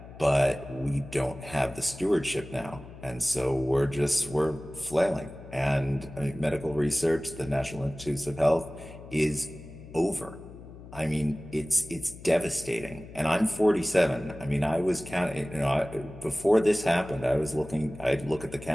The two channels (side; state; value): left; noise; hum, 16 dB below the sound